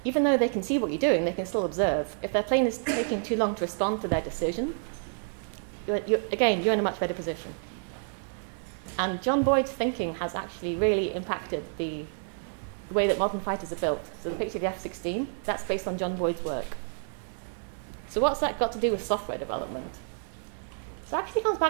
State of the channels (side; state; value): left; silent; 58 dB below the other